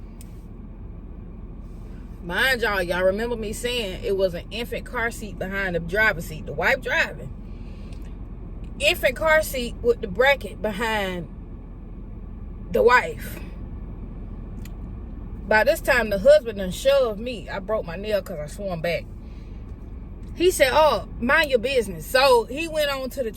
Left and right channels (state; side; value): identical; both; correlation 1.00